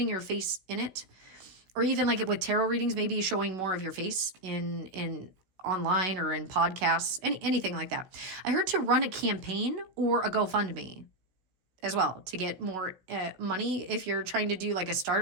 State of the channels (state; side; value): late; left; 16 ms